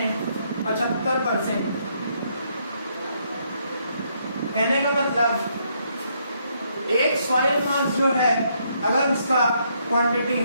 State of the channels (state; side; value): inverted; both; correlation -0.73